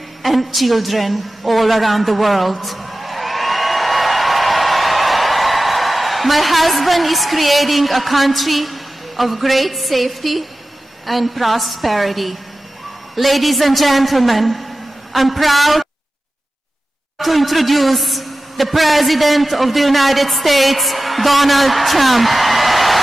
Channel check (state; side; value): normal; both; correlation 0.95